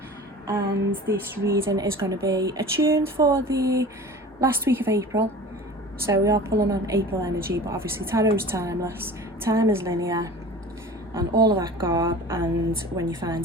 and this reading is going to be attuned for the last week of April. So we are pulling on April energy, but obviously tarot is timeless, time is linear, and all of that garb, and when you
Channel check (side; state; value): both; normal; correlation 0.39